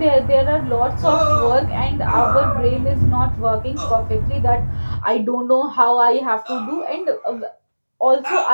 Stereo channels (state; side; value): inverted; both; correlation -1.00